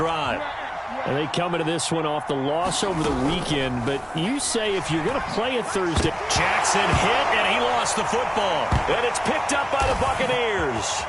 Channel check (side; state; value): both; identical; correlation 1.00